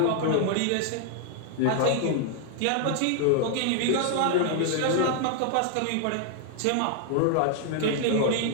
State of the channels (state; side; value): different; both; correlation 0.00